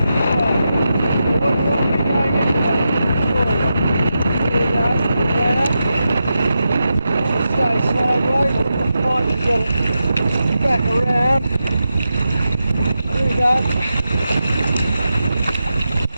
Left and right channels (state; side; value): inverted; both; correlation -0.88